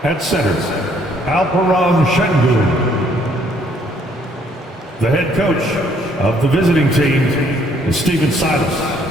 At center, Alperon Şengün. The head coach of the visiting team is Stephen Silas.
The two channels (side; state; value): both; normal; correlation 0.65